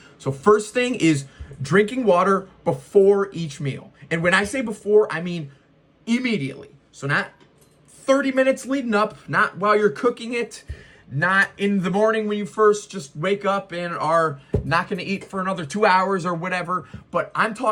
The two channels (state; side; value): identical; both; correlation 1.00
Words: So first thing is drinking water before each meal. And when I say before, I mean immediately. So not 30 minutes leading up, not while you're cooking it, not in the morning when you first just wake up and are not going to eat for another 2 hours or whatever. But I'm